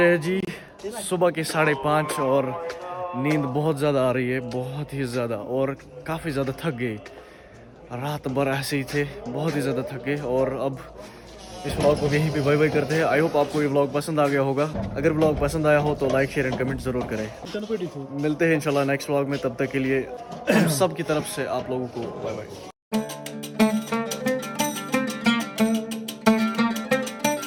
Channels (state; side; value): identical; both; correlation 1.00